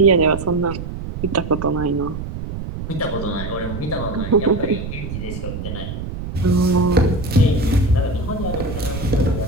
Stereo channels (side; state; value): right; noise; rumble, 7 dB below the sound